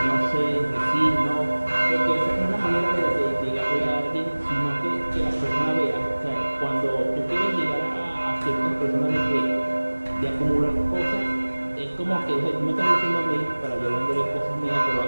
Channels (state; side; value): inverted; both; correlation -1.00